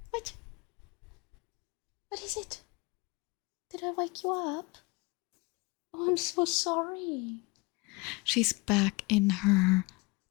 What? What is it? Did I wake you up? Oh, I'm so sorry. She's back in her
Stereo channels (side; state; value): right; quieter; 25.7 dB